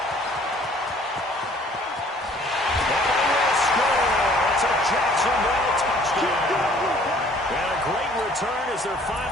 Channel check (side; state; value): both; normal; correlation 0.56